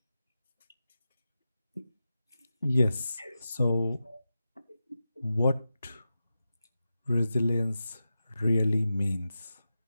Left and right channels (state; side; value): inverted; both; correlation -0.91